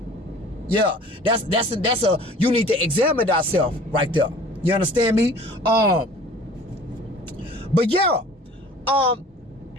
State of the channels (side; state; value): both; normal; correlation 0.47